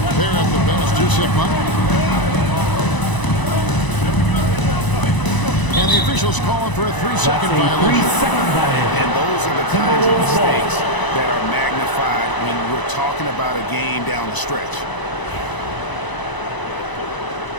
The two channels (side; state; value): right; late; 1.0 ms